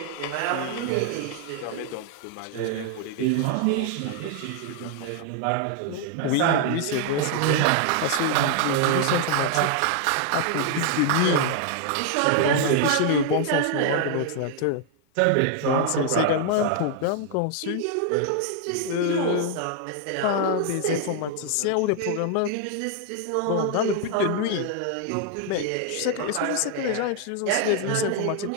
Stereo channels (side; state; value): both; different; correlation 0.00